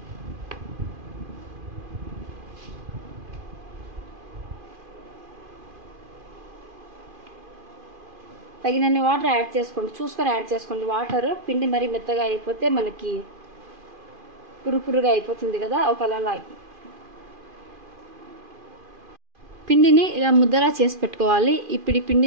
తగినన్ని వాటర్ యాడ్ చేసుకోండి, చూసుకొని యాడ్ చేసుకోండి. వాటర్ పిండి మరీ మెత్తగా అయిపోతే మనకి పురుపురుగా అయిపోతుంది కదా, ఒకలా పిండిని ఇలా ముద్దలా చేసి పెట్టుకోవాలి. ఇప్పుడు ఈ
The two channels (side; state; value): left; late; 2.5 ms